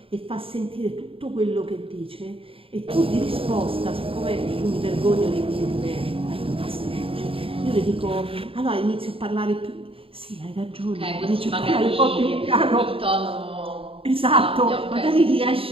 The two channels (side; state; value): left; late; 0.27 ms